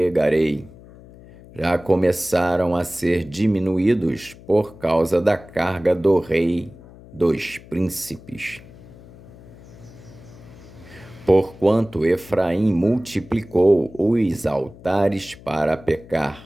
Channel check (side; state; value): left; noise; hum, 20 dB below the sound